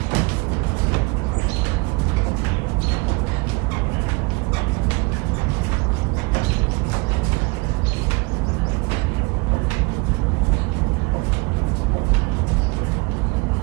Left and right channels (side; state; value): left; quieter; 27.8 dB